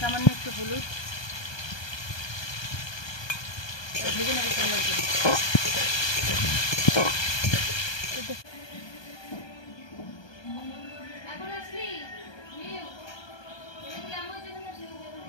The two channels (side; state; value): right; late; 1.2 ms